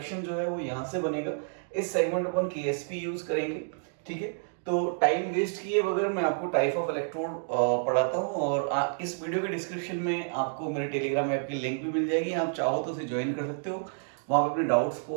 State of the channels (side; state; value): left; silent; digital silence